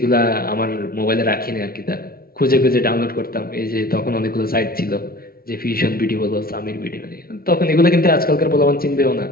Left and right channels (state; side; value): late; right; 0.43 ms